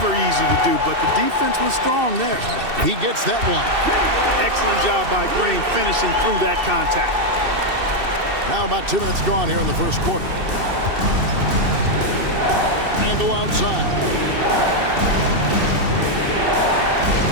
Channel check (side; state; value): left; late; 2.7 ms